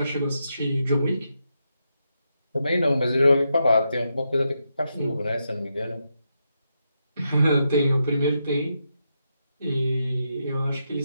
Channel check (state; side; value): inverted; both; correlation -0.84